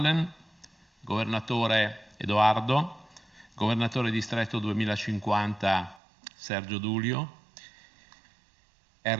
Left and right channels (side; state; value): left; drops out; at 6.0 s